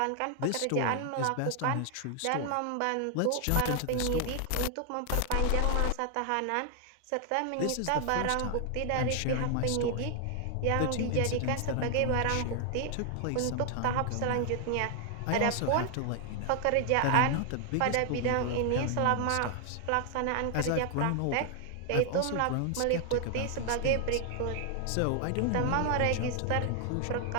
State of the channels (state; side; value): different; both; correlation 0.00